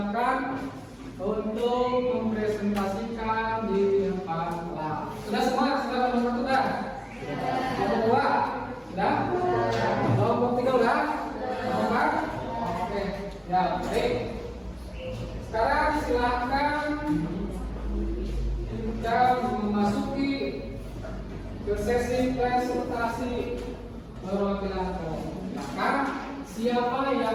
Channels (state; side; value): identical; both; correlation 1.00